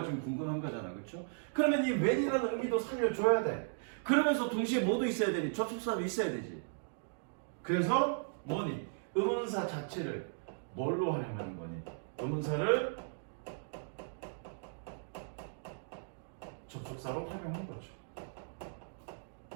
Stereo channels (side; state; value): left; silent; digital silence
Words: 좀 궁금한 거잖아. 그렇죠? 그러면 이 when이라는 의미도 살려줘야 돼. 그러면서 동시에 뭐도 있어야 되니? 접속사도 있어야 되지. 그래서 뭐니? 의문사 자체를 뭘로 활용하는 거니? 의문사를 접속사로 활용한 거죠.